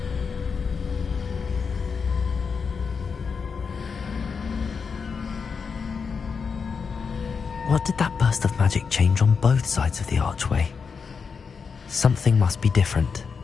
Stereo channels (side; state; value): right; quieter; 5.6 dB